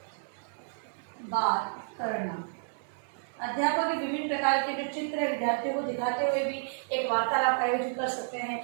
बात करना। अध्यापक विभिन्न प्रकार के जो चित्र है विद्यार्थियों को दिखाते हुए भी एक वार्तालाप आयोजित कर सकते हैं,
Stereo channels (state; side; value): silent; left; 57 dB below the other